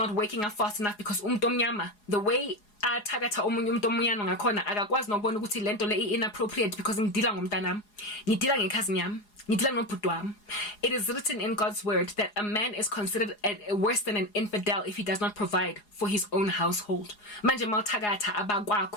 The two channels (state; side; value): late; right; 4.8 ms